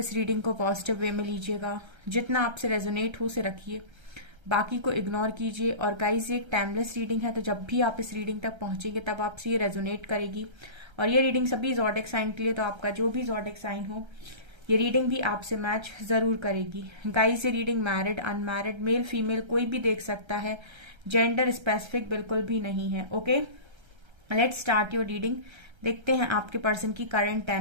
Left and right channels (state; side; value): late; left; 1.3 ms